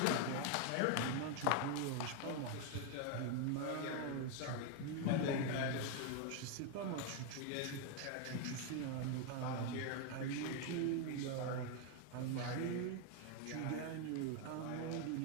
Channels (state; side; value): different; both; correlation 0.01